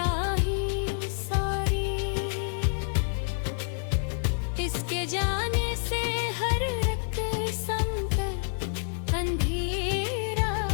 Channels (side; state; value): right; silent; 59 dB below the other